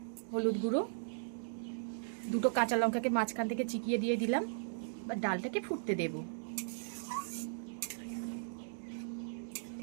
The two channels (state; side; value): silent; left; digital silence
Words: হলুদ গুঁড়ো। 2টো কাঁচা লঙ্কাকে মাঝখান থেকে চিকিয়ে দিয়ে দিলাম। বা ডালটাকে ফুটতে দেব।